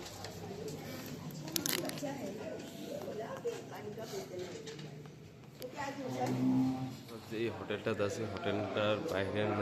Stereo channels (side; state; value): both; identical; correlation 1.00